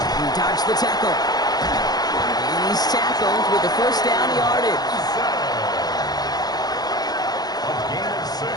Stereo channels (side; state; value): right; late; 0.19 ms